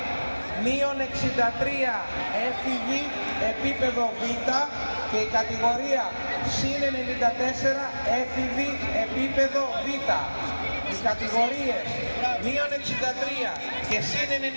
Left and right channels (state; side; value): inverted; both; correlation -1.00